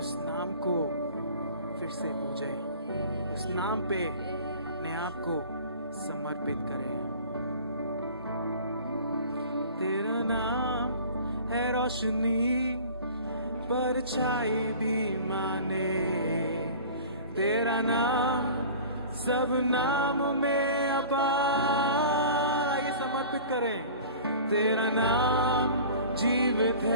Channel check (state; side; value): inverted; both; correlation -0.42